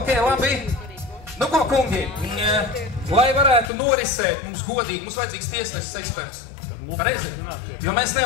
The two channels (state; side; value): drops out; right; at 3.7 s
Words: labi. Nu ko, kungi, lai varētu norisēt mums godīgi, mums vajadzīgs tiesnesis eksperts. Pareizi, jo mēs